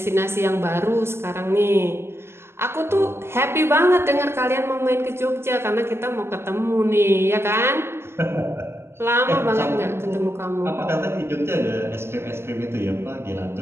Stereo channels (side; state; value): left; late; 0.12 ms